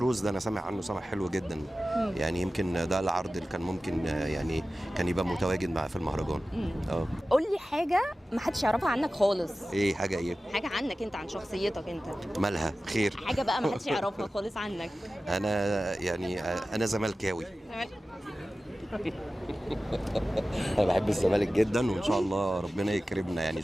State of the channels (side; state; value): both; normal; correlation 0.95